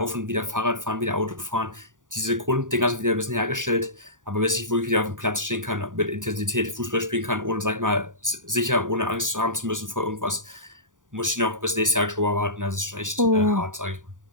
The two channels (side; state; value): left; late; 0.88 ms